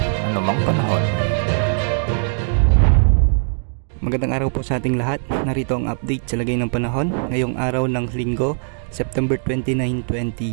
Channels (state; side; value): silent; left; digital silence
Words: anumang panahon. Magandang araw po sa ating lahat. Narito ang update sa lagay ng panahon ngayong araw ng Linggo, September 29,